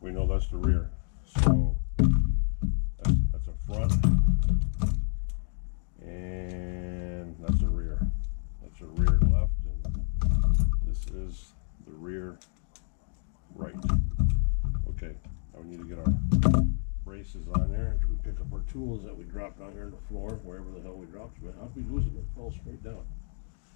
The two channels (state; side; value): silent; right; 58 dB below the other